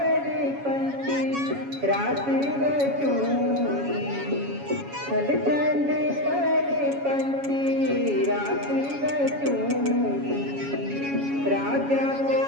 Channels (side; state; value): left; late; 7.2 ms